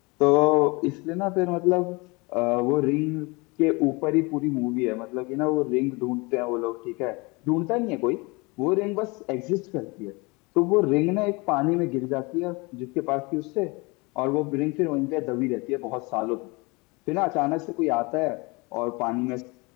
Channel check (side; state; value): right; quieter; 26.8 dB